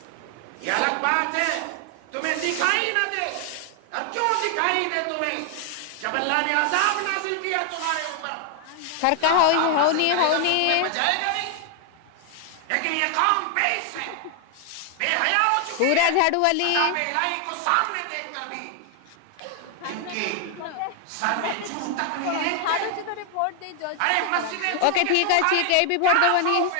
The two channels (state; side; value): different; both; correlation 0.00